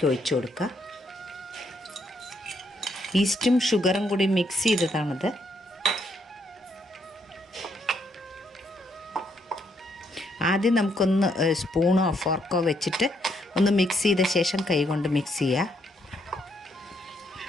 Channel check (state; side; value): normal; both; correlation 0.74